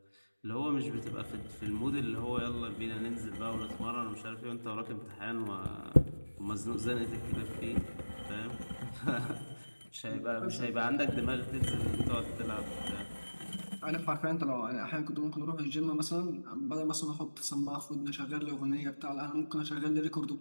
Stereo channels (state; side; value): inverted; both; correlation -1.00